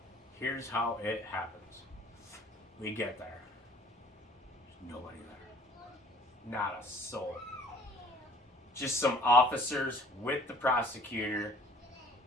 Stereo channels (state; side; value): normal; both; correlation 0.53